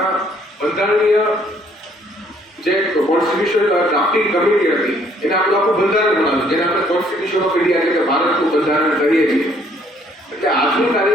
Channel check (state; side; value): normal; both; correlation 0.64